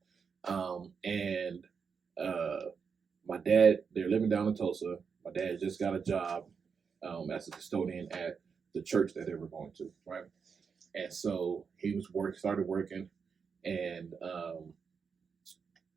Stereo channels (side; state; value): left; quieter; 6.0 dB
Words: and my dad, they're living down in Tulsa. My dad just got a job as a custodian at the church that they were going to, right? And so he started working, and